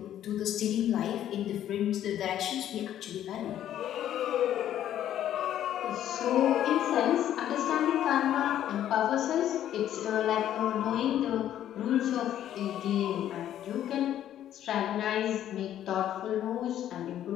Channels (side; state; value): right; quieter; 11.3 dB